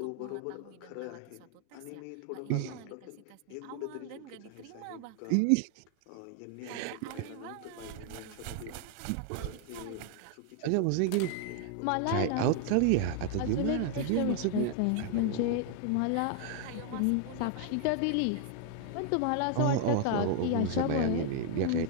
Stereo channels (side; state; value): both; different; correlation 0.00